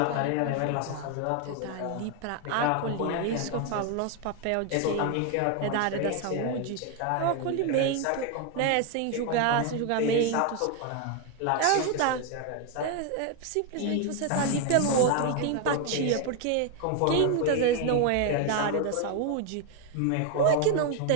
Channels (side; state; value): both; different; correlation 0.01